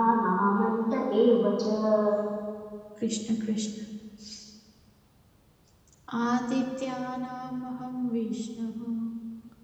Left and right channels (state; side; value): identical; both; correlation 1.00